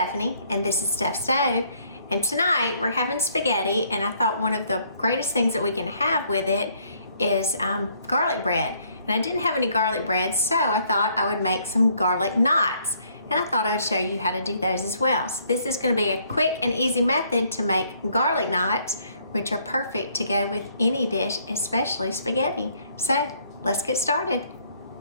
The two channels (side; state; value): both; inverted; correlation -0.66